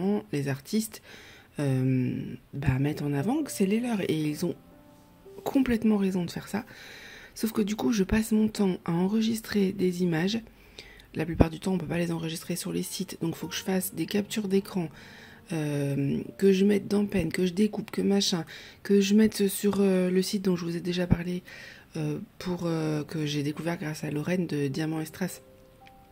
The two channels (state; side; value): identical; both; correlation 1.00